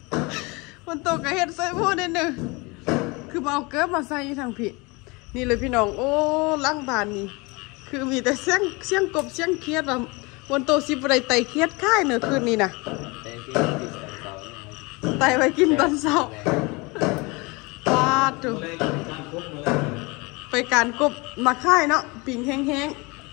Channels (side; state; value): right; quieter; 26.3 dB